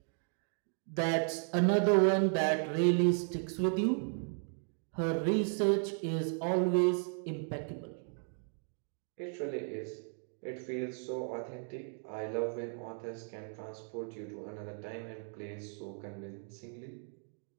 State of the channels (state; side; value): silent; left; 54 dB below the other